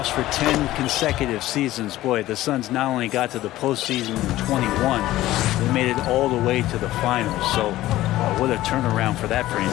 for 10 consecutive seasons, boy, the Suns not only got to the postseason in 21, they made it all the way to the finals. So what a turnaround for that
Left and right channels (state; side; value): quieter; right; 15.5 dB